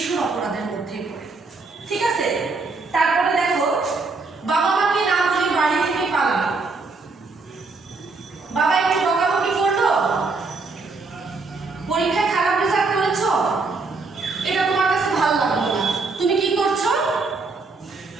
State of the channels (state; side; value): quieter; left; 3.9 dB